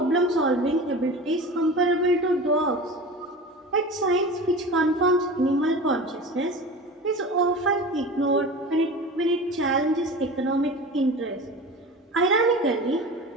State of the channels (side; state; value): both; normal; correlation 0.33